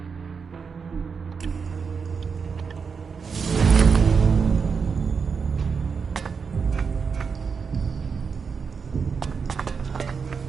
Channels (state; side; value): quieter; left; 5.7 dB